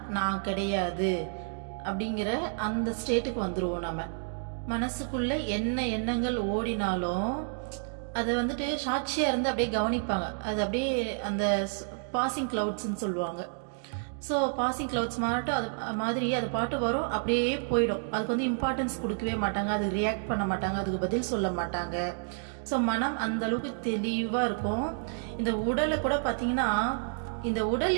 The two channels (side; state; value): left; silent; digital silence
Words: நான் கிடையாது அப்படிங்கிற அந்த ஸ்டேட்டுக்கு வந்துருவோம். நம்ம மனசுக்குள்ள என்ன எண்ணங்கள் ஓடினாலும் அதை வந்துட்டு சாட்சியா இருந்து அப்படியே கவனிப்பாங்க. அது அப்படியே அந்த பாசிங் கிளவுட்ஸ்ன்னு சொல்லுவாங்க. ஸோ பாசிங் கிளவுட்ஸ் மாட்டும் அது மாதிரி அது பாட்டு வரும், அப்படியே போயிடும். அதுக்கு வந்து இம்பார்ட்டன்ஸ் கொடுக்கவே மாட்டாங்க, அது ரியாக்ட் பண்ண மாட்டாங்க, அதுக்கு பதில் சொல்ல மாட்டாங்க. ஸோ மனம் அந்த அளவுக்கு தெளிவா இருக்கும். இந்த உடலை கூட பார்த்தீங்கன்னா இந்த உடல்